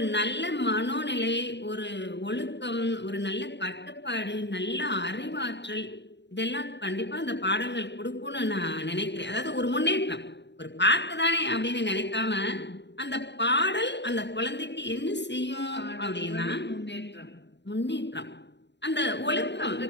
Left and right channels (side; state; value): right; late; 0.51 ms